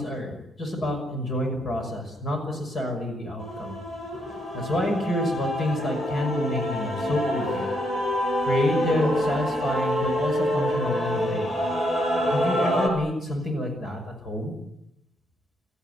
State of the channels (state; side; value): normal; both; correlation 0.75